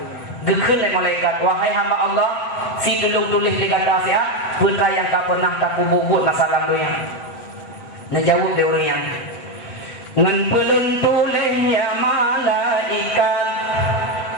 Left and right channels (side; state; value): right; late; 8.0 ms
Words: Gekun oleh malaikat wahai hamba Allah si tulung tulis di kata siap putra yang tak pernah tak buat masalah dunia. Najawab dia orang yang ngan pelun tulis ya malaikat